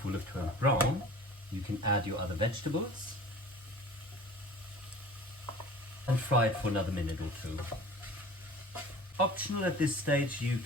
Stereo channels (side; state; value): both; normal; correlation 0.43